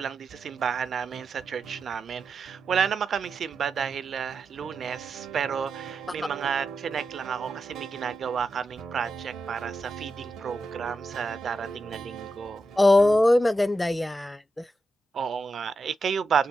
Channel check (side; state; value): both; normal; correlation 0.87